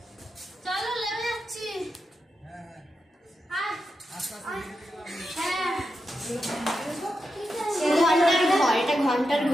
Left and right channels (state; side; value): normal; both; correlation 0.87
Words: চলো লেবে যাচ্ছি। ঘন্টার